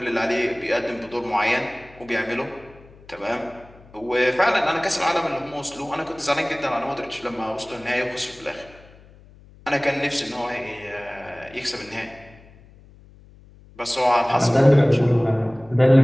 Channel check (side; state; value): left; noise; hum, 24 dB below the sound